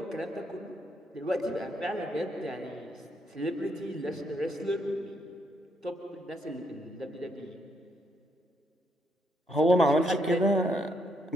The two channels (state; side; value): normal; both; correlation 0.74